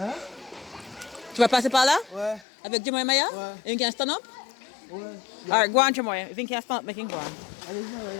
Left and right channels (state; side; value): drops out; right; at 2.5 s